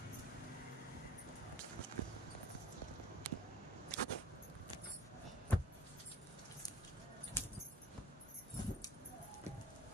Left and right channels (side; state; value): both; normal; correlation 0.48